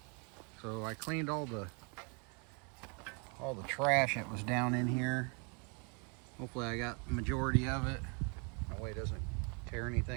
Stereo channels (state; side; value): quieter; left; 35.5 dB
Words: So I cleaned all the trash that was down in here. Hopefully I got the majority of it. That way it doesn't tear